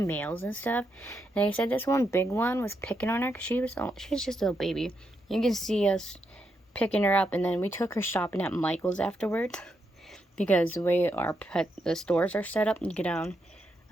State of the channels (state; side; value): normal; both; correlation 0.82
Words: males and stuff. And they said this one big one was picking on her because she was just a little baby. You can see us picking her up, and then we took her shopping at Michael's afterwards because the way the stores are set up, you get down.